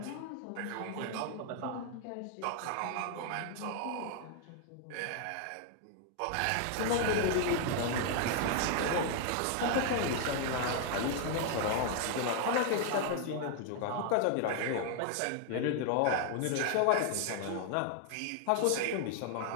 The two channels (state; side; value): different; both; correlation 0.00